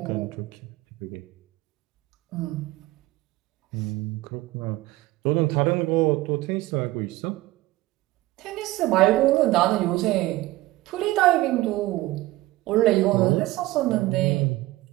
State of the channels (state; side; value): quieter; left; 18.2 dB